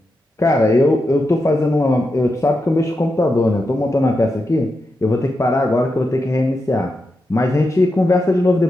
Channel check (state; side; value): normal; both; correlation 0.87